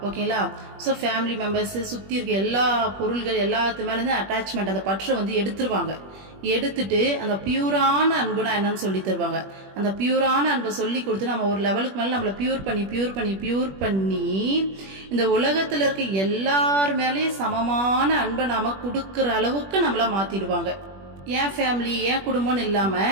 ஓகேங்களா? ஸோ ஃபேமிலி மெம்பர்ஸ், சுத்தி இருக்க எல்லா பொருள்கள் எல்லாத்து மேல இருந்து அட்டாச்மெண்ட், அந்த பற்றை வந்து எடுத்துருவாங்க. எடுத்துட்டு அந்த பியூரான அன்புனா என்னன்னு சொல்லி தருவாங்க. அந்த பியூரான அன்பை சொல்லி கொடுத்து நம்ம ஒரு லெவலுக்கு மேல நம்மளை பியூர் பண்ணி இந்த உலகத்துல இருக்க எல்லார் மேலேயும் சமமான அன்பை நாம கொடுக்கற அளவுக்கு நம்மள மாத்திடுவாங்க. என் ஃபேமிலி, என் குடும்பம்னு இல்லாம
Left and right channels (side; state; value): left; late; 21 ms